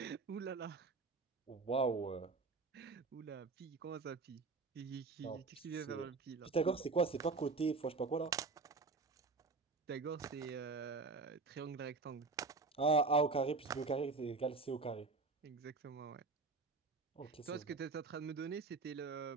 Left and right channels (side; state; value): left; quieter; 4.2 dB